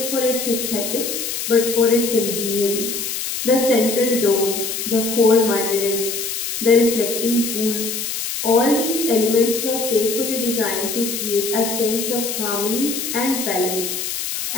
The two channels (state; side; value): noise; left; hiss, 4 dB below the sound